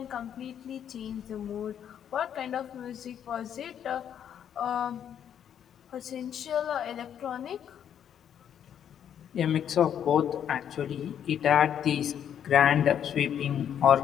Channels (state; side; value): quieter; right; 9.2 dB